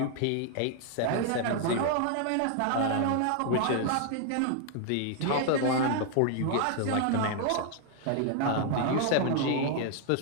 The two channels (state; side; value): different; both; correlation 0.00